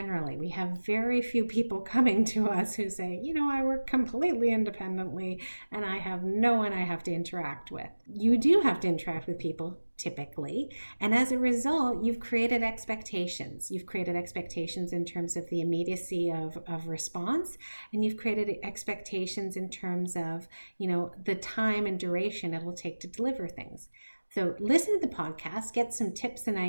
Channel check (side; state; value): both; inverted; correlation -1.00